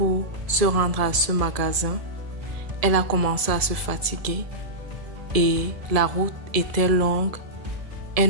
se rendre à ce magasin, elle a commencé à se fatiguer et la route était longue.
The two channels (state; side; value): late; left; 1.7 ms